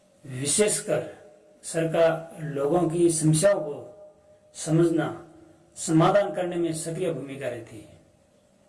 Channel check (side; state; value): both; identical; correlation 1.00